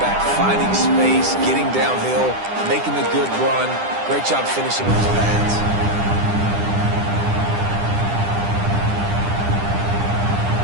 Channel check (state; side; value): late; left; 10 ms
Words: back, finding space, getting downhill, making the good run. Great job finishing with his pads.